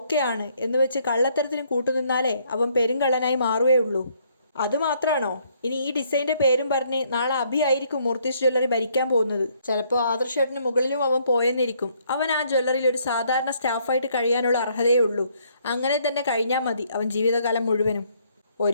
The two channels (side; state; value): both; inverted; correlation -0.68